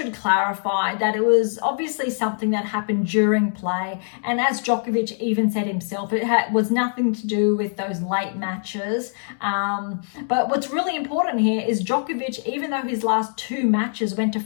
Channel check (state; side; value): silent; right; digital silence